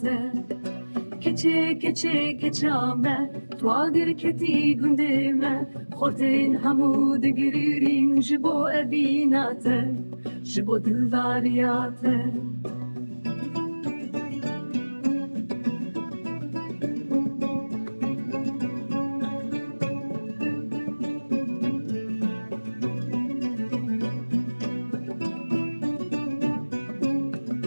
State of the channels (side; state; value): both; inverted; correlation -1.00